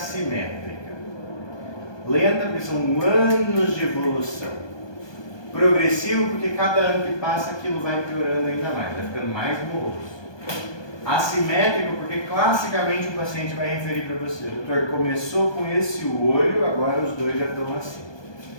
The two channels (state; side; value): late; right; 1.2 ms